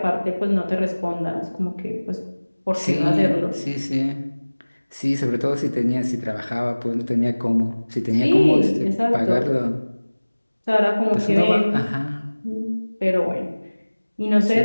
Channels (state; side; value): inverted; both; correlation -1.00